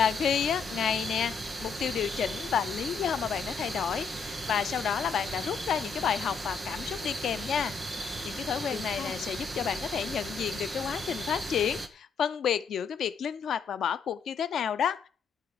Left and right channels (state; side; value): quieter; right; 5.7 dB